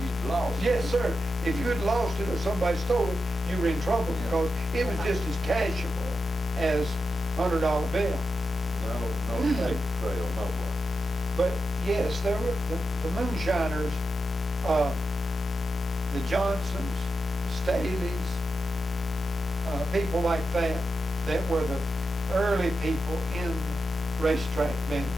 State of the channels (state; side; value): normal; both; correlation 0.88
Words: you'd lost it. Yes, sir. If you had lost it or somebody stole it, you were in trouble because it was just as cashable as $100 bill. No paper trail, no one. But yes, there were the moonshiners, the Johnsons, the Staleys, people like that were the early people in the racetrack business